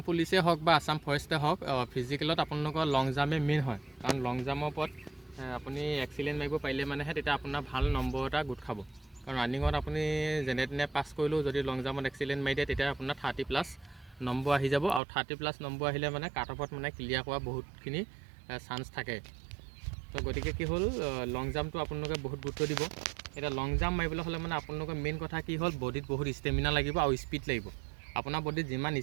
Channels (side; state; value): left; drops out; at 15.0 s